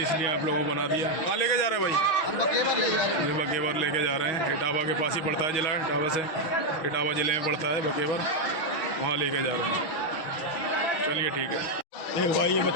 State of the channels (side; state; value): right; late; 6.3 ms